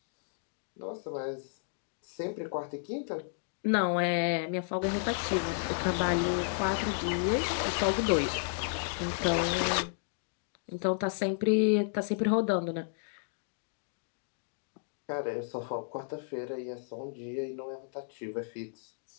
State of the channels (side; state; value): right; silent; digital silence